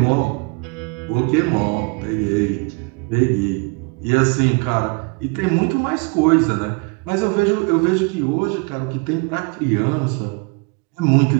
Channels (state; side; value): quieter; left; 30.9 dB